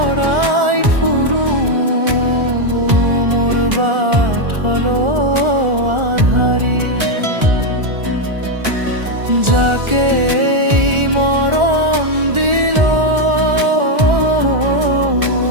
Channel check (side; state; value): left; late; 1.4 ms